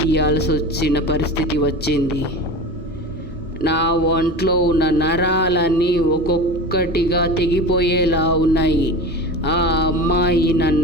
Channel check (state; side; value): normal; both; correlation 0.31